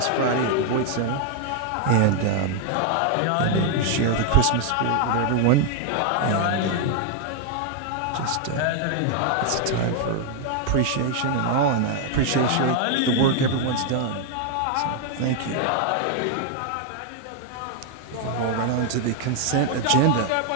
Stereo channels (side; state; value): both; different; correlation 0.00